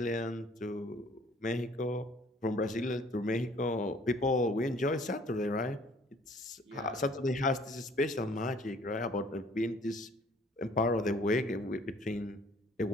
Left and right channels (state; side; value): normal; both; correlation 0.57